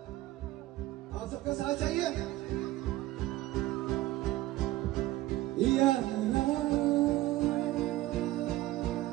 आप सबका साथ चाहिए।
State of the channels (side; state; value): left; quieter; 16.8 dB